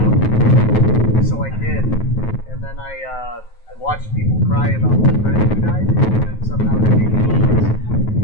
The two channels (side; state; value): right; late; 9.3 ms